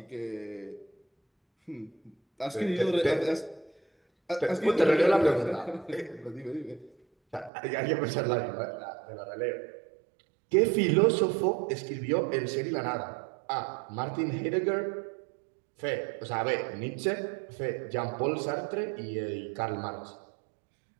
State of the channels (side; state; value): left; drops out; at 7.5 s